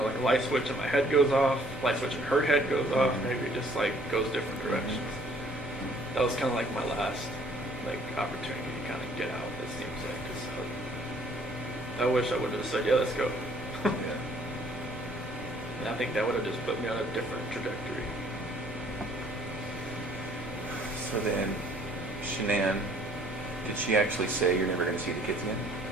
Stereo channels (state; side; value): normal; both; correlation 0.59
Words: a light switch in my head goes off, light switch in her head goes off, maybe it just like goes different directions. That was kind of like my last like opportunity to kind of get out, it seems like, because I wish I would have said, yeah, let's go. Yeah. And I think that would have just put me on a different trajectory. So then, Shanann, did she actually say you're never going to see the kids again?